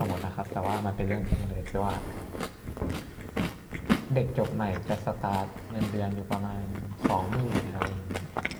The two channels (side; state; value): both; identical; correlation 1.00